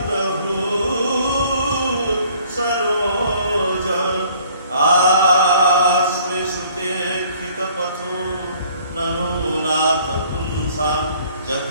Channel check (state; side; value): inverted; both; correlation -0.57